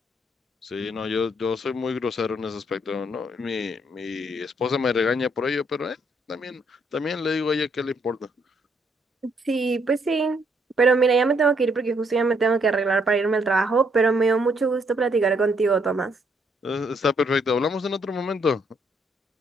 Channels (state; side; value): normal; both; correlation 0.71